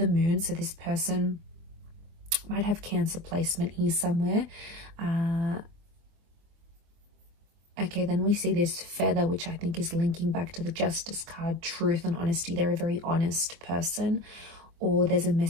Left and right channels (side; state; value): left; late; 24 ms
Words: moon. So this person might have Cancer placement here somewhere. Okay, then we see this feather, which I think is linking back to the Justice card, truth and honesty. They're a very honest person, or there's a